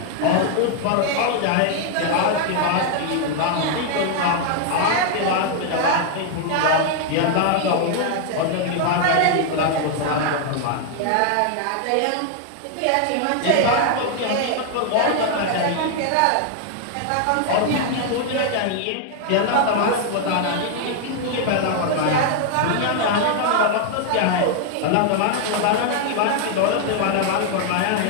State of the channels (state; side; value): different; both; correlation 0.00